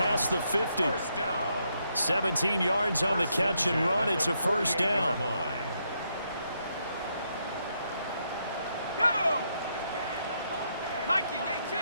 the 50. 17 yards on the catch and run. It's a 1st down. Go! 19-18.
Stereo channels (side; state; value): both; inverted; correlation -0.78